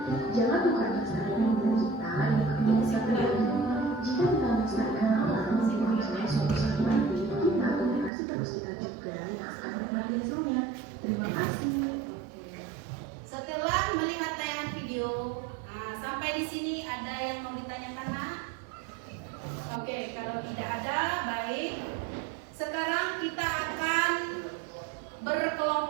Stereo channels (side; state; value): left; drops out; at 8.1 s